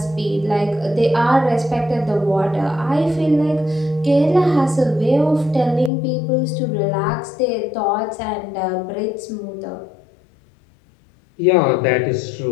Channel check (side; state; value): right; drops out; at 5.9 s